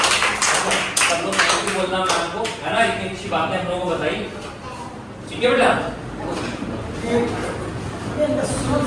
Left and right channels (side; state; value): both; identical; correlation 1.00